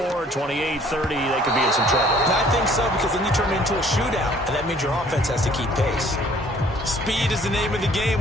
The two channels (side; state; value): both; normal; correlation 0.57